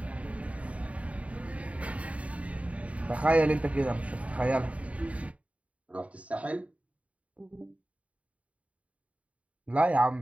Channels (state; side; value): late; left; 0.066 ms